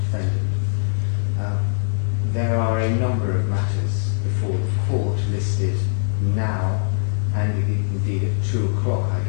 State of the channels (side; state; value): right; silent; 64 dB below the other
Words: defendant. There are a number of matters before the court listed now, and indeed at 2 o'clock I